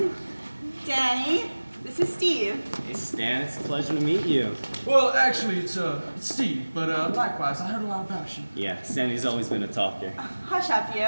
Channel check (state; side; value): inverted; both; correlation -1.00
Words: Danny, this is Steve. Hey, Stan, it's a pleasure to meet you. Well, actually, it's Steve, but likewise, I heard a lot about you. Yeah, Sandy's always been a talker. Hush up,